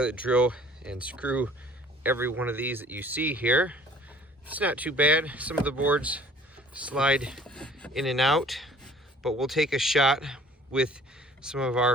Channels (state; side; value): normal; both; correlation 0.52